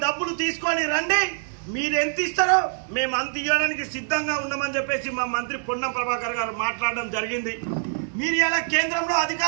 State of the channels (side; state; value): left; silent; 62 dB below the other